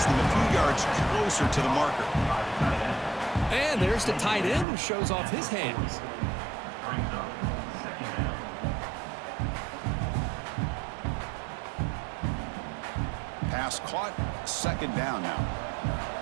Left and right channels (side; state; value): left; drops out; at 4.7 s